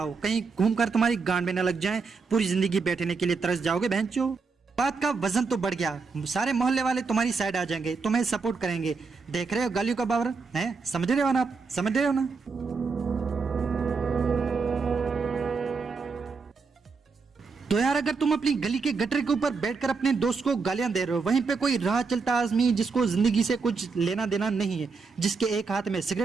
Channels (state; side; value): quieter; left; 4.7 dB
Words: कहीं घूमकर तुम्हारी गांड में न लग जाएं, पूरी जिंदगी बैठने के लिए तरस जाओगे बहनचो। बात का वजन तो बढ़ गया, सारे मोहल्ले वाले तुम्हारी साइड आ जाएंगे, तुम्हें सपोर्ट करेंगे। देख रहे हो गालियों का पावर है? समझ रहे हो ना आप? समझ रहे हो ना? तो यार अगर तुम अपनी गली के गटर के ऊपर बैठकर अपने दोस्त को गालियां दे रहे हो, वहीं पे कोई राह चलता आदमी जिसको जिंदगी से कुछ लेना देना नहीं है, जिसके एक हाथ में